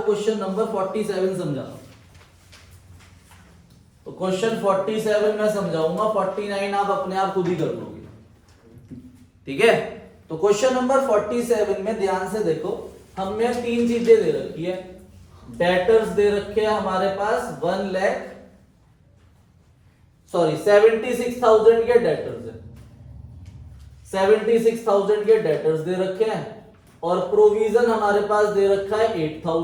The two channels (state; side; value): identical; both; correlation 1.00